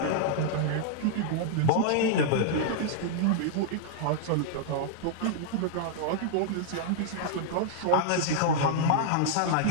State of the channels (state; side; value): different; both; correlation -0.01